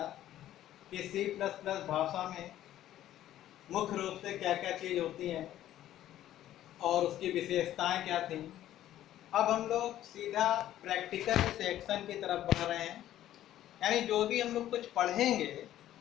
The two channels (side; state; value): right; quieter; 12.8 dB